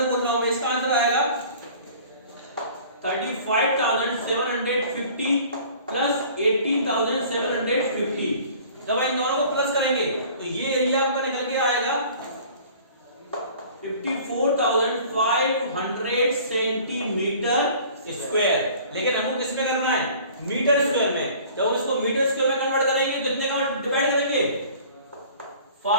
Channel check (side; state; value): both; inverted; correlation -0.48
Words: बोल रहा हूं मैं, इसका आंसर आएगा 35,750 प्लस 18,750। जब इन दोनों को प्लस करेंगे तो ये एरिया आपका निकल के आएगा 54,500 सेंटीमीटर स्क्वायर। लेकिन हमको किस में करना है, मीटर स्क्वायर में। जब हम इसको मीटर स्क्वायर में कन्वर्ट करेंगे तो कितने का डिवाइड करेंगे,